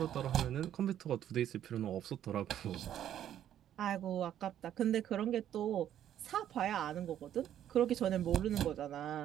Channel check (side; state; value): left; quieter; 10.8 dB